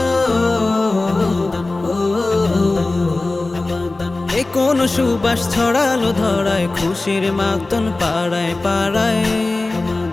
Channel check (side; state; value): right; quieter; 3.1 dB